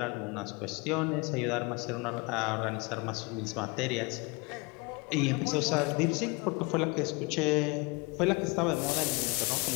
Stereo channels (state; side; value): quieter; right; 27.7 dB